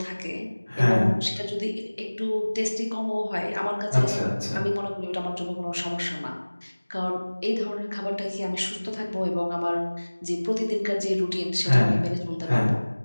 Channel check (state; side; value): inverted; both; correlation -1.00